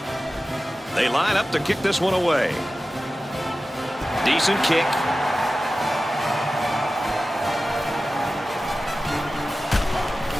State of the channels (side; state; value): both; normal; correlation 0.95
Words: They line up to kick this one away. Decent kick.